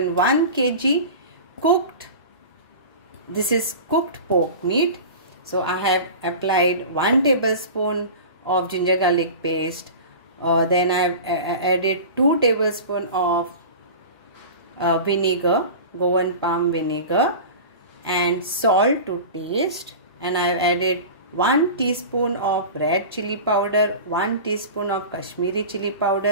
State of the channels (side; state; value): both; inverted; correlation -0.33